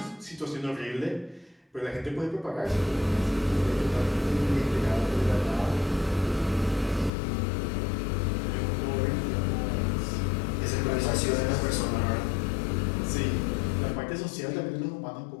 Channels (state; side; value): drops out; right; at 7.1 s